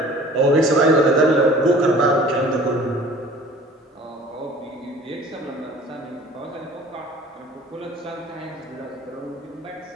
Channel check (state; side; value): normal; both; correlation 0.47